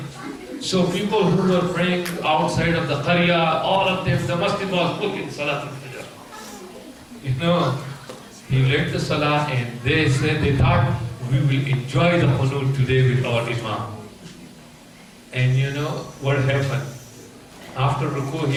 So people who were praying outside of the Qarya, all of them, the masjid was full in Salat al-Fajr. You know, he led the Salah and they said, they thought, we will enjoy the Qunut today with our Imam. And you know what happened? After Ruku,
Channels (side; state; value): both; identical; correlation 1.00